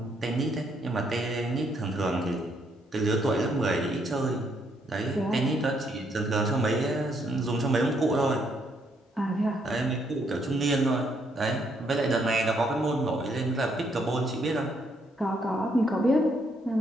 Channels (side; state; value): both; normal; correlation 0.73